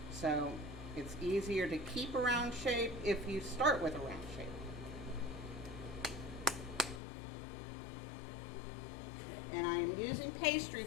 So it's easier to keep a round shape if you start with a round shape. And I'm using pastry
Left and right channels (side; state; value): right; drops out; at 7.0 s